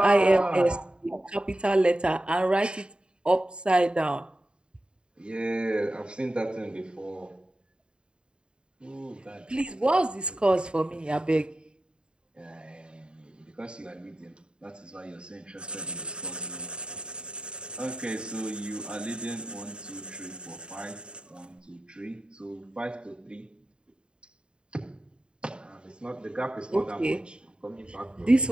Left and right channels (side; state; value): left; late; 0.051 ms